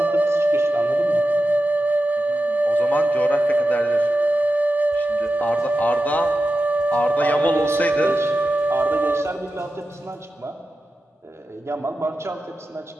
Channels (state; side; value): normal; both; correlation 0.92